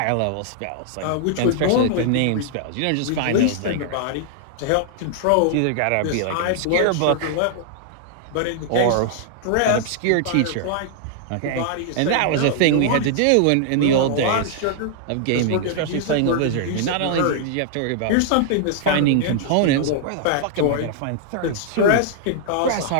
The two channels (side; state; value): both; different; correlation -0.01